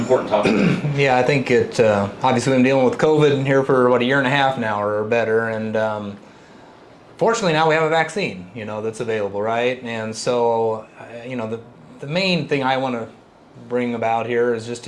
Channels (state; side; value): identical; both; correlation 1.00